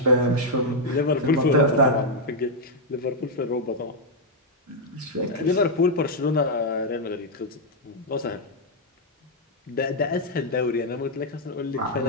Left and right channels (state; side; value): normal; both; correlation -0.01